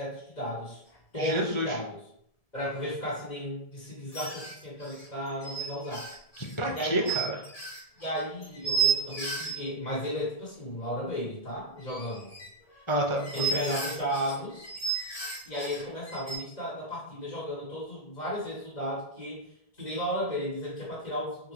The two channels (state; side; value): late; right; 1.7 ms